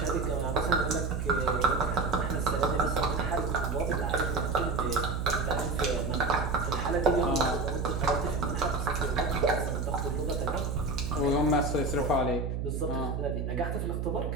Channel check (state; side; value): noise; right; hum, 2 dB below the sound